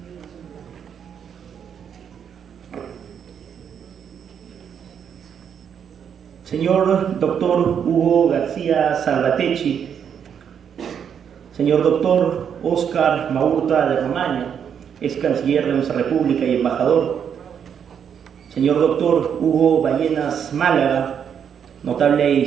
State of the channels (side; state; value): left; quieter; 7.9 dB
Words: Señor doctor Hugo García Salvatecchi, señor doctor Óscar Maurta de Romaña, ex canciller de nuestra República y embajador, señor doctor Hugo Ballenas Málaga, notable